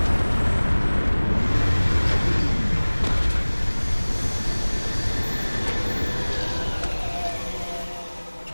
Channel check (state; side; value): inverted; both; correlation -1.00